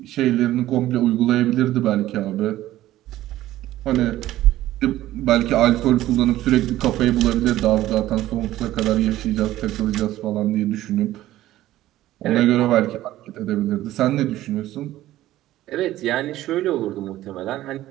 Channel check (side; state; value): left; quieter; 14.8 dB